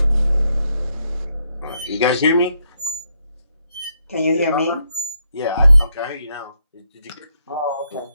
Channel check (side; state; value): both; inverted; correlation -0.77